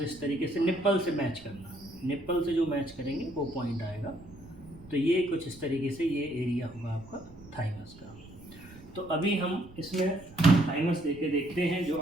इस तरीके से निप्पल से मैच करना, निप्पल से जो मैच करेंगे वो पॉइंट आएगा। तो ये कुछ इस तरीके से ये एरिया होगा आपका थाइमस का। तो अभी हम इसमें थाइमस देके देखते हैं जो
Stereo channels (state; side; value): noise; right; rumble, 21 dB below the sound